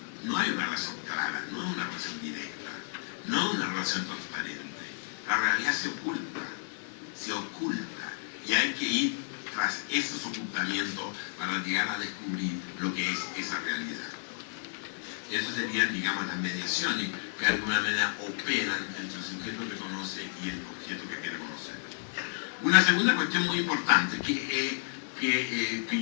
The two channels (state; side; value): silent; right; 57 dB below the other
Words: no hay una relación clara, no es una relación directa, no es una relación transparente. La realidad se oculta, y hay que ir tras esos ocultamientos para llegar a descubrir lo que es esa realidad. Eso serían, digamos, las mediaciones que de alguna manera operan entre el sujeto que conoce y el objeto que quiere conocer. Una segunda cuestión muy importante que